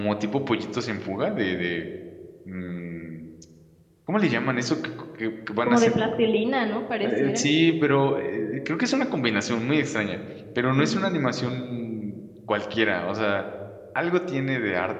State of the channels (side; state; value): both; identical; correlation 1.00